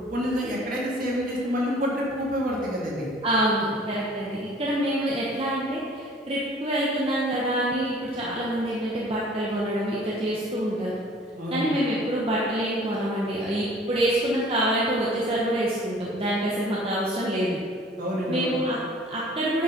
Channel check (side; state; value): both; normal; correlation 0.51